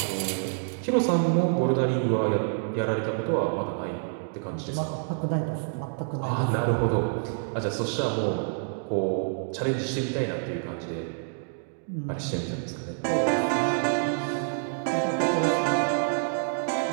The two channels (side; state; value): left; silent; digital silence